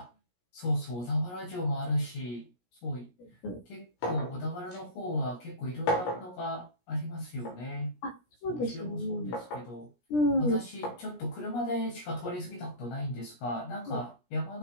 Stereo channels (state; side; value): late; right; 17 ms